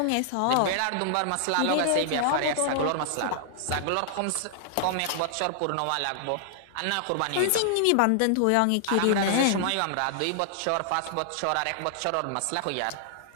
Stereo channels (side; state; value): both; different; correlation 0.00